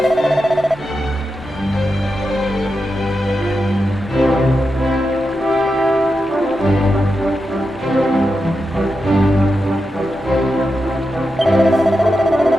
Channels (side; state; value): both; normal; correlation 0.88